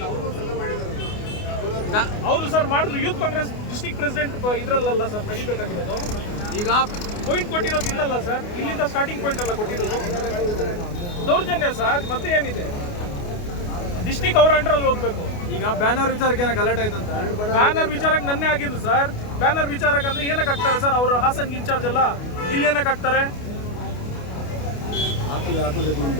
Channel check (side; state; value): right; late; 28 ms